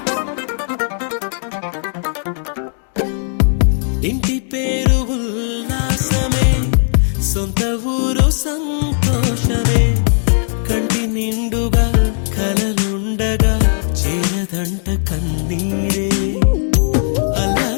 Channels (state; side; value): silent; right; digital silence